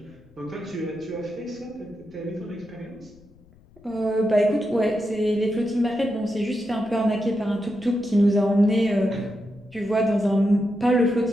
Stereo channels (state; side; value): noise; left; rumble, 27 dB below the sound